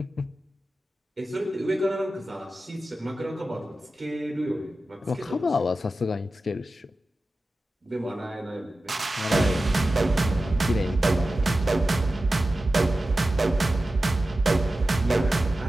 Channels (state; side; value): normal; both; correlation 0.94